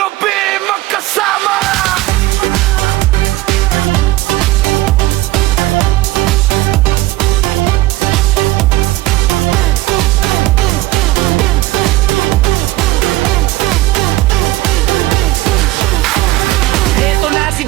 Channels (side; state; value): left; quieter; 18.0 dB